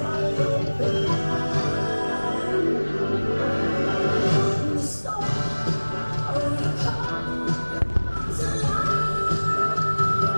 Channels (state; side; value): inverted; both; correlation -1.00